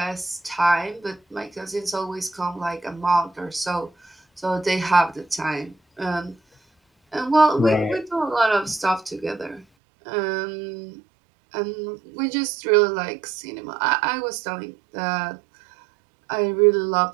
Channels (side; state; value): left; drops out; at 9.7 s